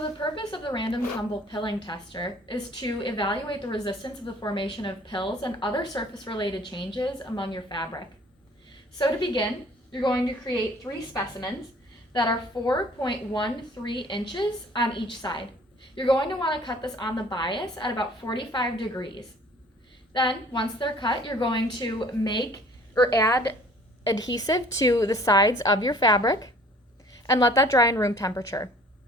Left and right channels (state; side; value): normal; both; correlation 0.53